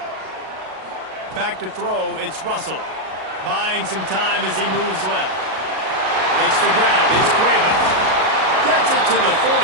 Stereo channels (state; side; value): late; left; 37 ms